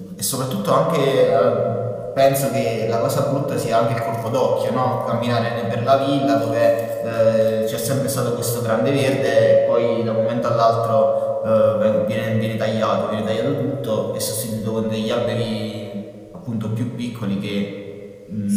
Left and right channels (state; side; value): identical; both; correlation 1.00